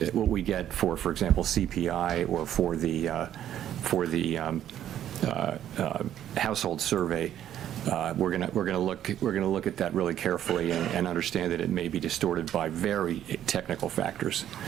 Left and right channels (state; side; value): quieter; left; 11.1 dB